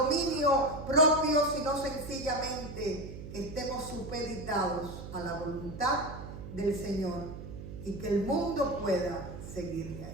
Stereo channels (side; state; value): right; noise; hum, 11 dB below the sound